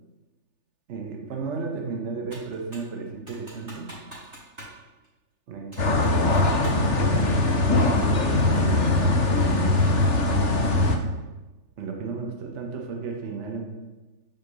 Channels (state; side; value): late; left; 3.4 ms